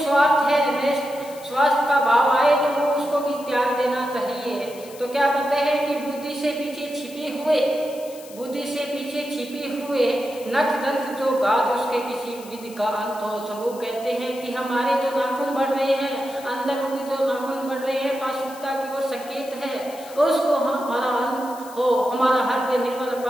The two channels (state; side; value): noise; left; hiss, 19 dB below the sound